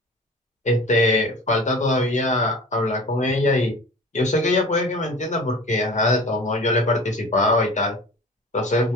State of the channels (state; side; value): normal; both; correlation 0.40